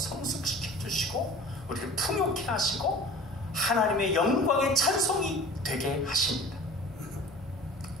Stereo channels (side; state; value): both; normal; correlation 0.43